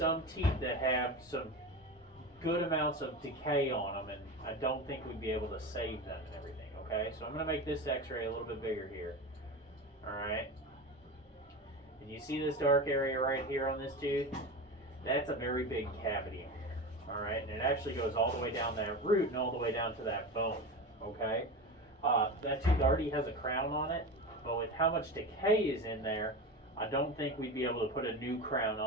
teeth that have some good amounts of decay on them, and I don't think we'd be able to save them and everything, okay? So I'm going to make this x-ray a little bit bigger here, all right? And you see this dark area right here on this tooth? That's a very big cavity, all right? And it actually goes all the way down that root and all the way down to that bone, okay? That tooth already has a crown on it, but with how much decay is in there, I don't think we'd be able to put a new crown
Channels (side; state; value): both; normal; correlation 0.25